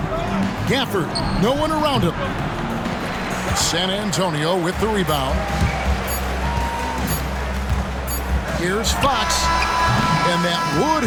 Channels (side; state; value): both; identical; correlation 1.00